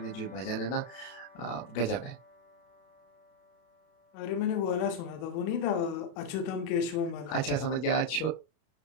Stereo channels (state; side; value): late; right; 32 ms